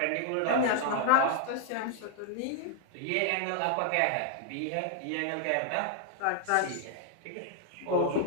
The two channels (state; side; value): different; both; correlation -0.01